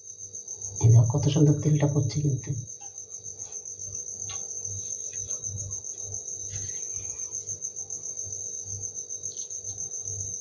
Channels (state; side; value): identical; both; correlation 1.00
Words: এই দেখো কত সুন্দর তেলটা পড়ছে কিন্তু।